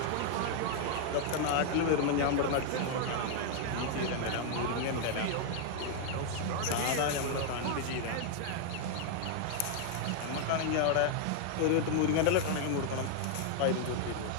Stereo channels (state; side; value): different; both; correlation 0.00